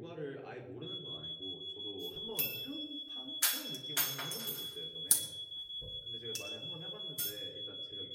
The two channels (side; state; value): both; identical; correlation 1.00